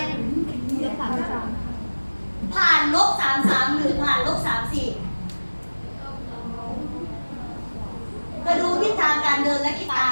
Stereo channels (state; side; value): inverted; both; correlation -1.00